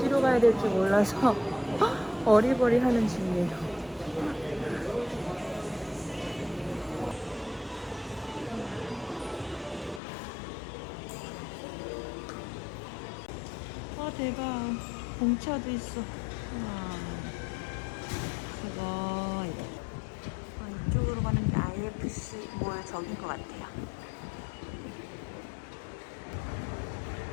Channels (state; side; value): drops out; right; at 10.0 s